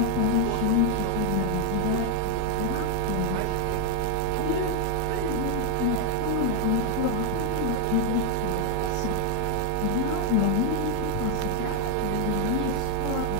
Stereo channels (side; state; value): both; different; correlation 0.00